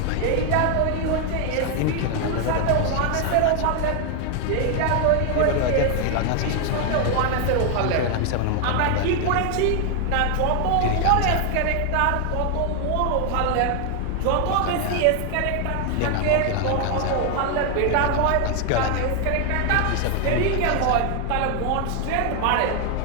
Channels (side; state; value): both; different; correlation 0.00